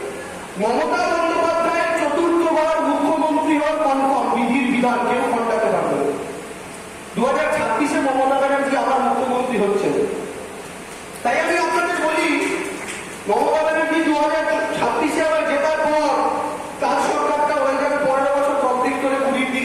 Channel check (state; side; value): identical; both; correlation 1.00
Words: মমতা বন্দ্যোপাধ্যায়ের 4র্থবার মুখ্যমন্ত্রী হওয়ার কনফার্ম, বিধির বিধান, কেউ খণ্ডাতে পারবে। 2026-এ মমতা ব্যানার্জি আবার মুখ্যমন্ত্রী হচ্ছে। তাই আমি আপনাদের বলি, মমতা ব্যানার্জি 2026-এ আবার জেতার পর তার সরকারটা হয়ে যাবে 15 বছর কমপ্লিট করে 20-র